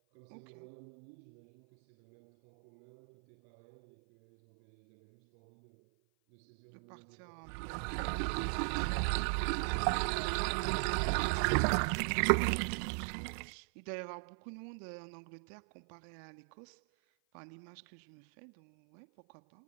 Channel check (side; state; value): left; silent; 53 dB below the other